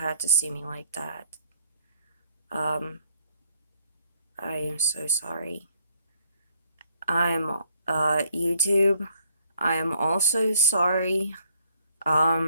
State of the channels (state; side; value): inverted; both; correlation -0.68